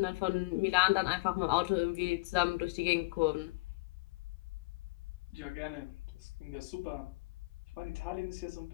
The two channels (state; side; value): quieter; right; 26.3 dB